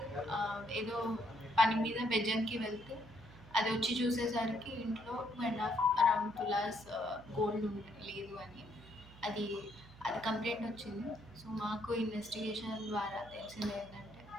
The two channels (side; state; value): right; noise; hum, 20 dB below the sound